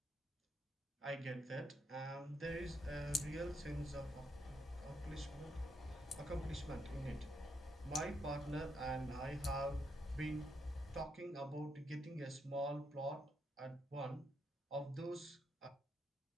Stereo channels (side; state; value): both; normal; correlation 0.78